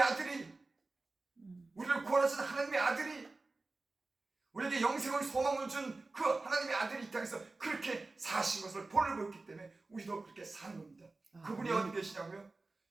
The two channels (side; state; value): left; quieter; 3.4 dB